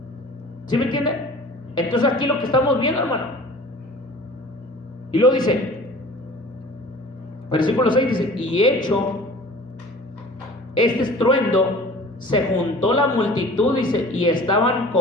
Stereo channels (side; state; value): both; normal; correlation 0.44